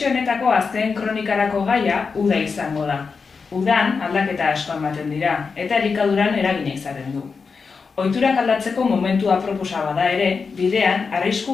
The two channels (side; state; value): right; quieter; 5.1 dB